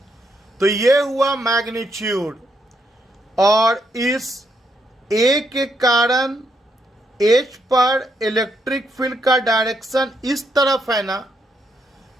तो ये हुआ मैग्नीट्यूड और इस A के कारण H पर इलेक्ट्रिक फील्ड का डायरेक्शन इस तरफ है ना,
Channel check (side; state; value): both; normal; correlation 0.77